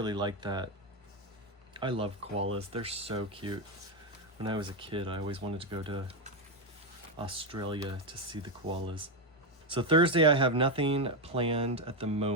like that. I love koalas, they're so cute. When I was a kid, I always wanted to go to Australia to see the koalas. So Thursday, I have nothing planned at the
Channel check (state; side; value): normal; both; correlation 0.08